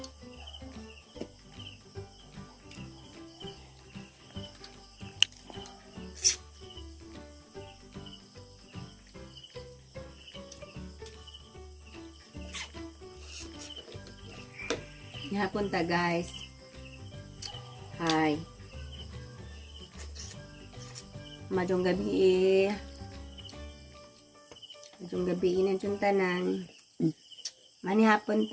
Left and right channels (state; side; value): identical; both; correlation 1.00